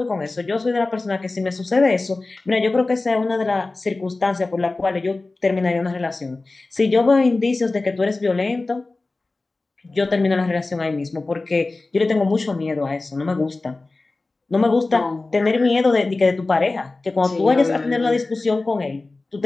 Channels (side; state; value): right; quieter; 3.3 dB